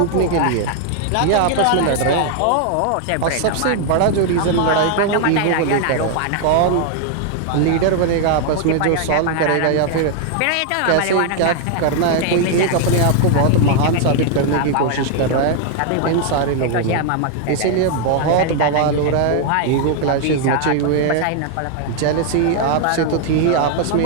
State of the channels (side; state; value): both; different; correlation 0.00